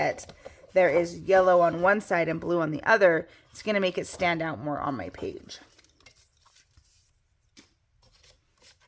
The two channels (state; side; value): identical; both; correlation 1.00